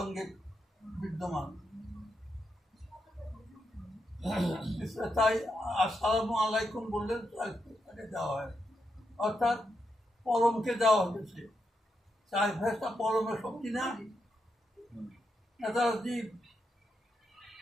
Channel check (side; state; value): both; normal; correlation 0.84